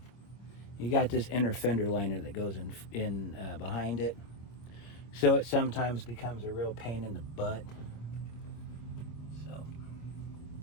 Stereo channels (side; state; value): right; late; 25 ms